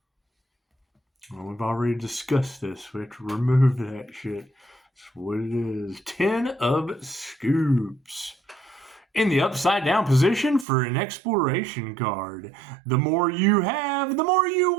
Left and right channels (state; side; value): drops out; left; at 10.7 s